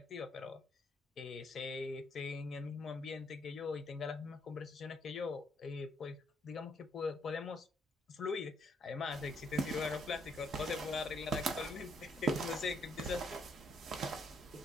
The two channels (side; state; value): both; normal; correlation 0.71